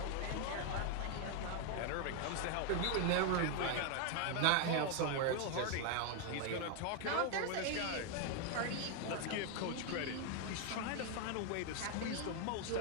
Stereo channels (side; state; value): both; different; correlation 0.01